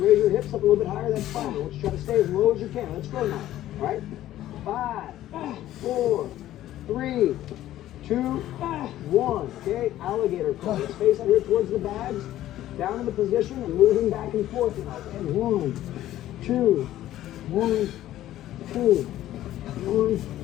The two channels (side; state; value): right; quieter; 13.6 dB